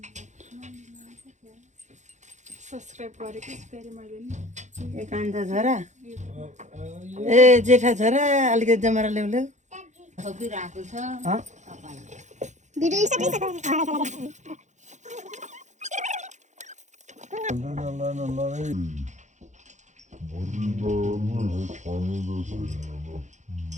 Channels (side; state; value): left; late; 0.34 ms